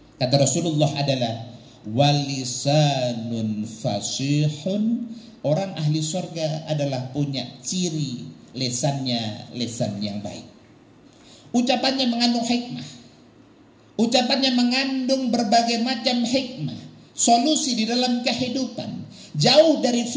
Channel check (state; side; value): identical; both; correlation 1.00